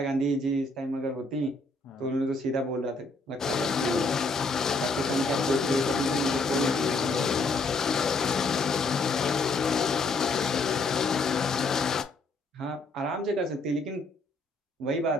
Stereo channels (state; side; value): quieter; right; 3.1 dB